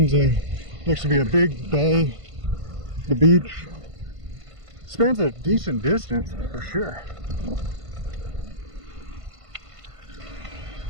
looks to be a big bay. The beach spans a decent distance for sure.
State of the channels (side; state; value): left; late; 1.5 ms